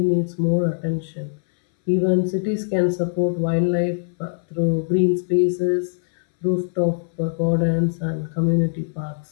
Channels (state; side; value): silent; right; 62 dB below the other